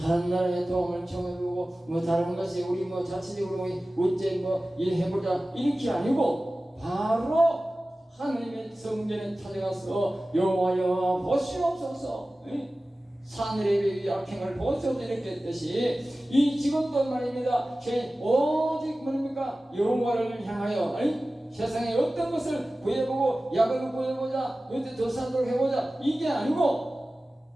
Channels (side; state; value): both; normal; correlation 0.96